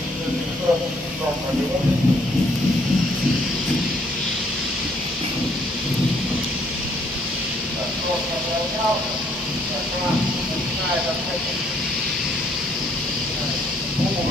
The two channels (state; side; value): normal; both; correlation 0.66